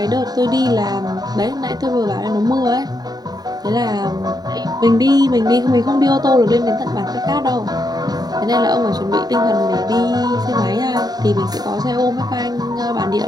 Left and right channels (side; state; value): left; late; 0.19 ms